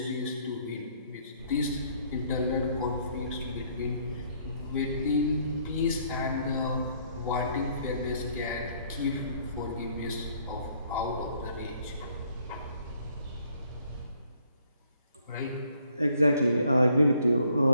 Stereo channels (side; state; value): both; inverted; correlation -0.65